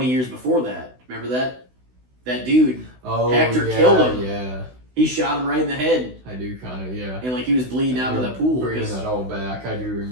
years before that. Remember that? That dude, Hector killed him. Yeah. He shot him right in the head. I do kind of, yeah. And like he was bleeding out of that pool. Bringing that all back. I do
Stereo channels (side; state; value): left; late; 16 ms